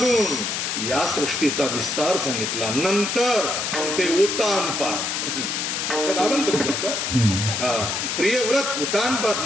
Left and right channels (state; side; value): noise; left; hiss, 1 dB below the sound